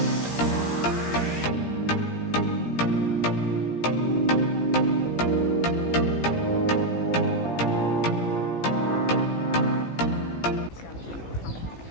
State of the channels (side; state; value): right; late; 17 ms